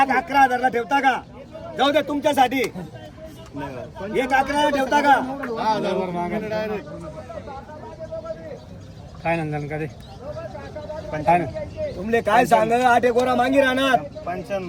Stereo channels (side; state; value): both; identical; correlation 1.00